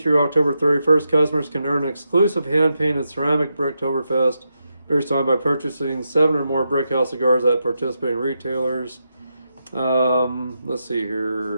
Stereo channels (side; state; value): both; inverted; correlation -0.85